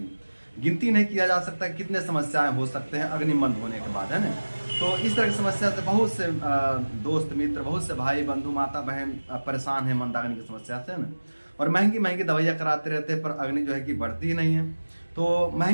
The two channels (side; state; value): both; inverted; correlation -1.00